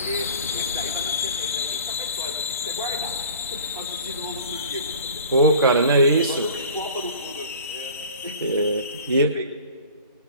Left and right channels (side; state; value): both; inverted; correlation -0.43